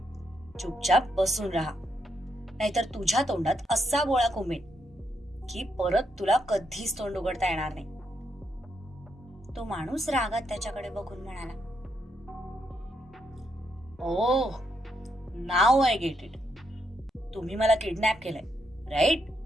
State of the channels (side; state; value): both; normal; correlation 0.79